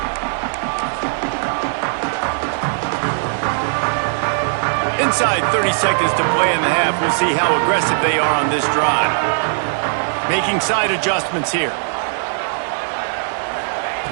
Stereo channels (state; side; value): silent; left; digital silence